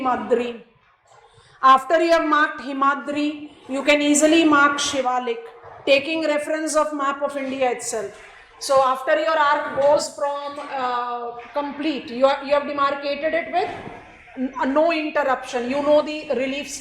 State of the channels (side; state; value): both; identical; correlation 1.00